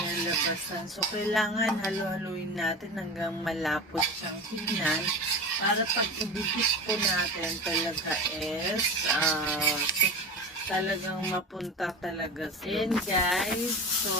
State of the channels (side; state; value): both; normal; correlation 0.30